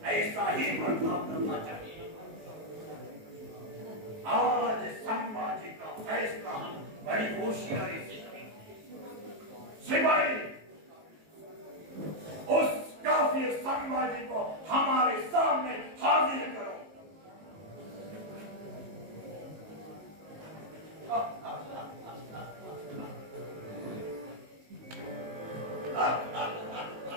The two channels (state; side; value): late; left; 19 ms